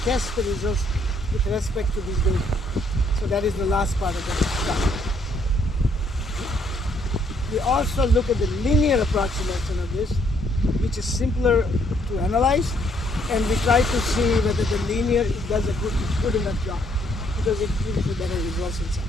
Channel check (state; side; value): normal; both; correlation 0.68